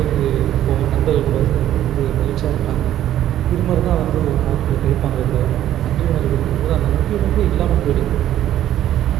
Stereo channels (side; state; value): left; quieter; 12.1 dB